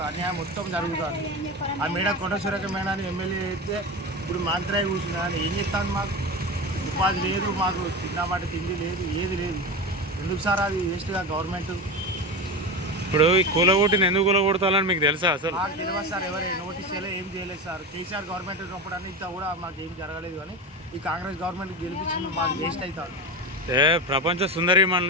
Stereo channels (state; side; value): normal; both; correlation 0.22